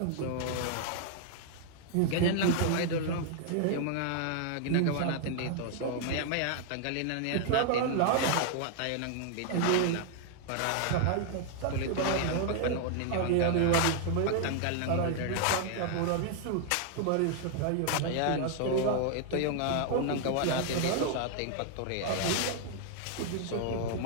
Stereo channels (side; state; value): both; different; correlation 0.00